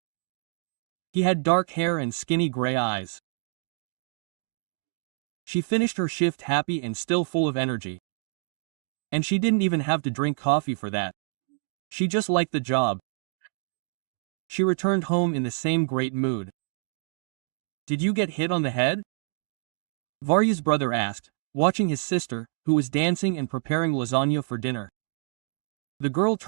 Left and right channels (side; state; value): left; silent; digital silence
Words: He had dark hair and skinny gray eyes. She finished her shift happy and still full of energy. And she didn't even have to drink coffee for that. She just liked the job. She returned home in the same great mood. "Did you get hit on the head?" Varya's brother asked, watching his sister, who was dancing and preparing lasagna for dinner. The girl